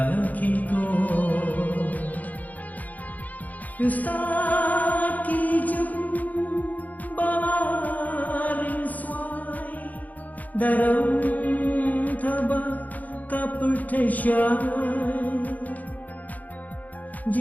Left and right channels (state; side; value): late; right; 0.079 ms